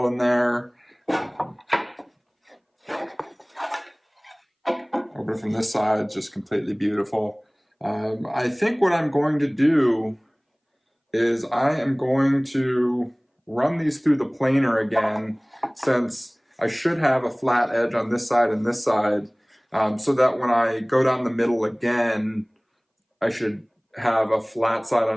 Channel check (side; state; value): both; identical; correlation 1.00